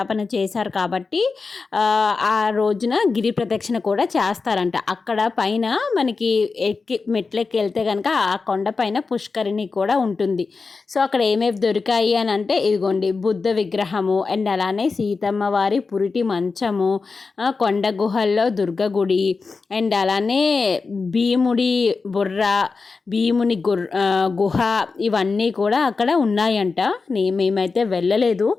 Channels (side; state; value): right; quieter; 4.4 dB